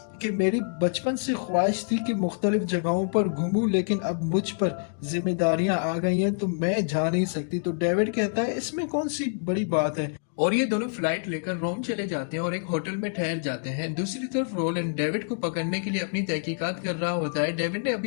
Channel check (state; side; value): silent; right; digital silence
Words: कि मेरी बचपन से ख्वाहिश थी कि मुख्तलिफ जगहों पर घूमूं, लेकिन अब मुझ पर जिम्मेदारियां आ गई हैं तो मैं जा नहीं सकती। तो डेविड कहता है इसमें कौन सी बड़ी बात है, और ये दोनों फ्लाइट लेकर रोम चले जाते हैं और एक होटल में ठहर जाते हैं। दूसरी तरफ रोलैंड डेविड को पकड़ने के लिए अपनी तहकीकात कर रहा होता है। डेविड ने